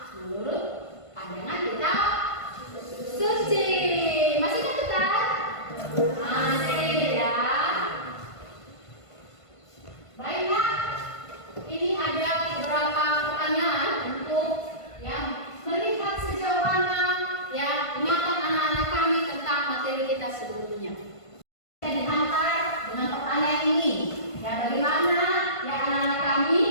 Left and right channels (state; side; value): late; right; 1.5 ms